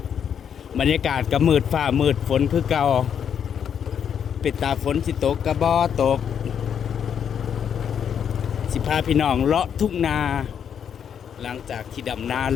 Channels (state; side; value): quieter; right; 8.1 dB